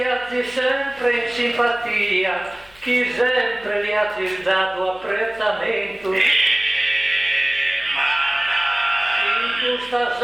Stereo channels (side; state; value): left; noise; hum, 27 dB below the sound